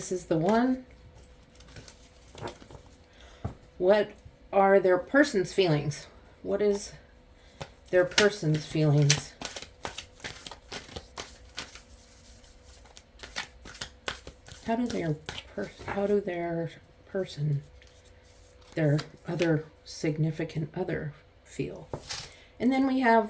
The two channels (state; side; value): identical; both; correlation 1.00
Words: is the one. What are their person's feelings? What is their person's feelings? How do their person, their other significant other feel? And then we have